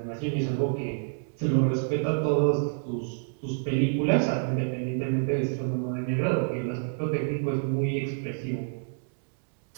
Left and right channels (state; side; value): silent; left; digital silence